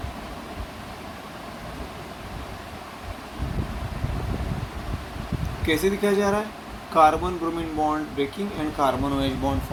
कैसे दिखाया जा रहा है? Carbon bromine bond breaking and carbon OH bond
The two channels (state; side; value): identical; both; correlation 1.00